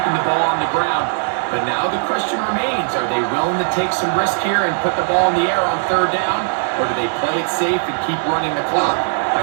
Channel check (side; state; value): left; silent; digital silence